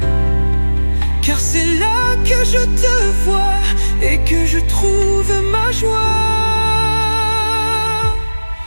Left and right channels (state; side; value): inverted; both; correlation -1.00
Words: car c'est là que je te vois et que je trouve ma joie.